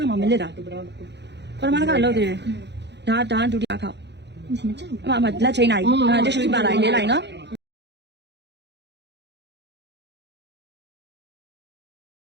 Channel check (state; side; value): late; left; 0.50 ms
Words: ခါမှမလစ်တာပထမတစ်ခါလုပ်သေးတယ်ဒါဒုတိယခေါက် မကြောက် အမလက်ချိန်လိုက်တိရှူပါလိုက်လေးလိုက်နော်